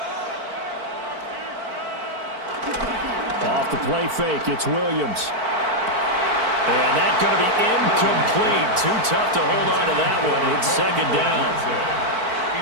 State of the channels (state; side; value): late; left; 4.5 ms